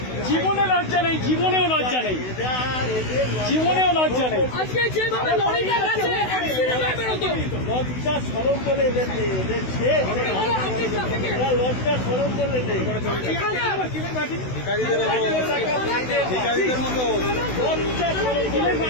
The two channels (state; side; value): late; right; 16 ms